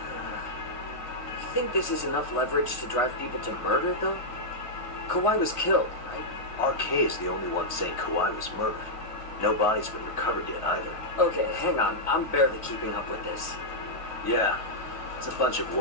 You think this is enough leverage to drive people to murder, though? Kawai was killed, right? RK is the only one saying Kawai was murdered. No body's been recovered yet either. Okay, hang on. I'm barely keeping up with this. Yeah, it's a bunch of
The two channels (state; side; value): late; right; 1.5 ms